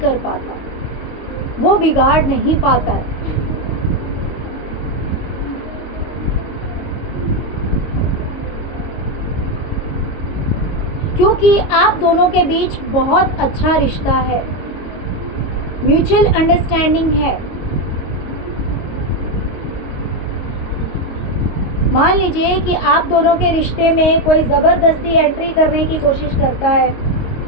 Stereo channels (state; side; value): late; right; 22 ms